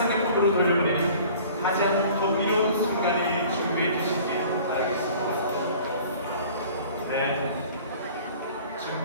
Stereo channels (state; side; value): inverted; both; correlation -0.48